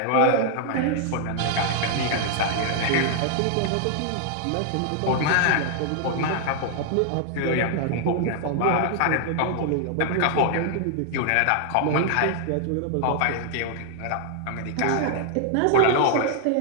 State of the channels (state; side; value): different; both; correlation 0.00